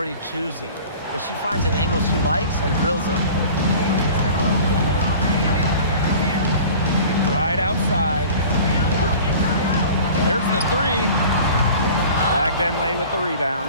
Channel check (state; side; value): inverted; both; correlation -0.42